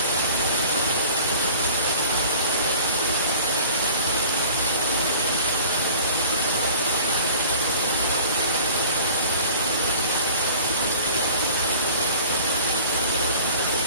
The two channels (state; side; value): inverted; both; correlation -0.44